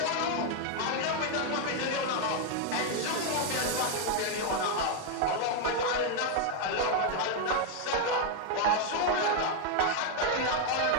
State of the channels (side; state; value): both; different; correlation 0.01